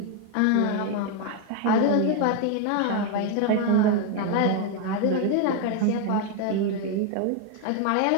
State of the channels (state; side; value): different; both; correlation 0.01